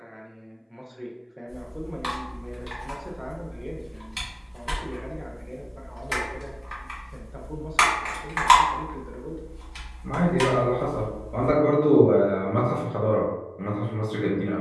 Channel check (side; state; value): both; identical; correlation 1.00